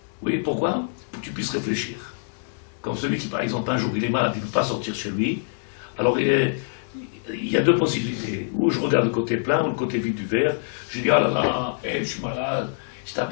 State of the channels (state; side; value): silent; right; 62 dB below the other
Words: Oui, pourquoi? Pour que tu puisses réfléchir. Comme celui qui, par exemple, un jour, il est malade, il ne peut pas sortir chez lui, alors il y a deux possibilités. Ou je regarde le côté plein, ou le côté vide du verre, je dis, ah là là, je suis malade, je